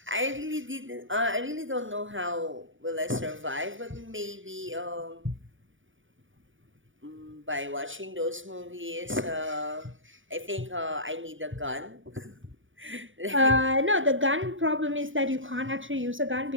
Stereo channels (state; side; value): late; left; 0.57 ms